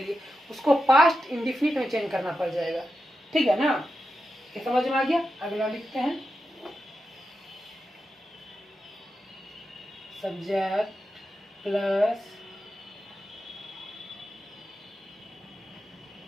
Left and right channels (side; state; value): both; normal; correlation 0.89